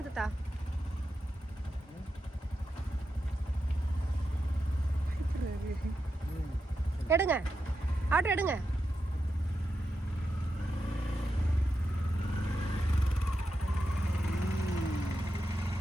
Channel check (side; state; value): both; normal; correlation 0.87